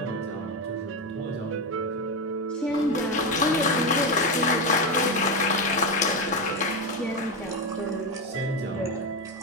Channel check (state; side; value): normal; both; correlation 0.12